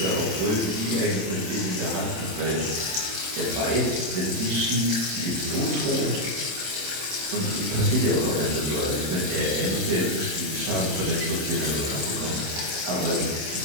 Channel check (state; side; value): late; left; 27 ms